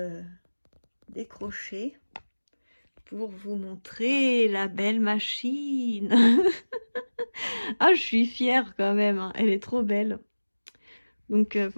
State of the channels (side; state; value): both; inverted; correlation -1.00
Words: décroché pour vous montrer la belle machine. Ah, je suis fière quand même, hein. Elle est trop belle. Donc